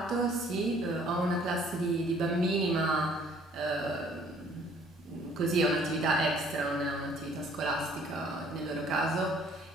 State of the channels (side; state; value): both; normal; correlation 0.58